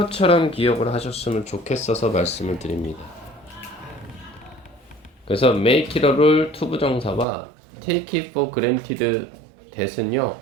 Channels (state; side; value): drops out; left; at 7.2 s